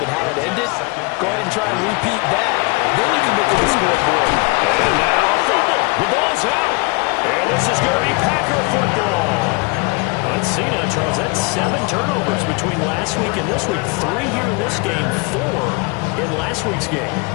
how it ended. Go ahead and try and repeat that. Then you can look at the scoreboard. And now a fumble. The ball's out. And this is going to be Packer football. Let's see now, Charles. That's 7 turnovers between last week and this week. 3 here in this game, 4 in last week's game.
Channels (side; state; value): right; quieter; 29.0 dB